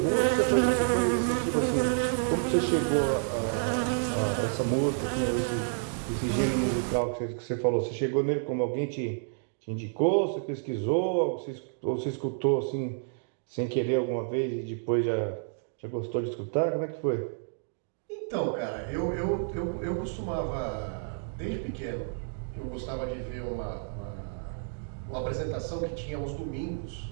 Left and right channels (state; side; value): silent; left; digital silence